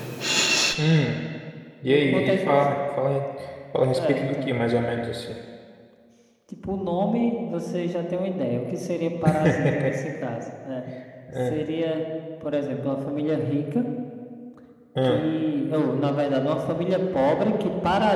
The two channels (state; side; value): identical; both; correlation 1.00